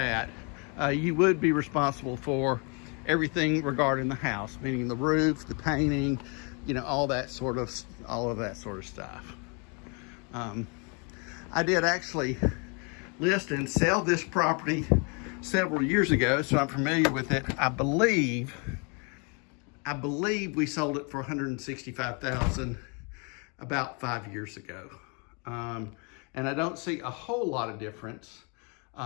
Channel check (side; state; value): right; quieter; 34.2 dB